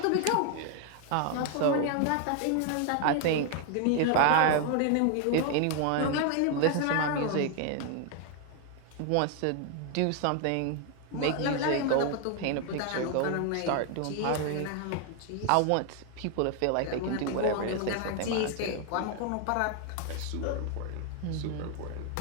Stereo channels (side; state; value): both; different; correlation 0.00